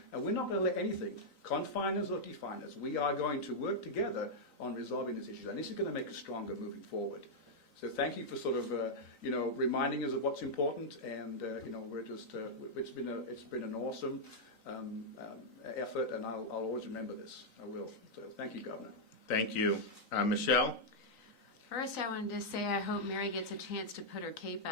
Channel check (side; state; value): right; late; 3.9 ms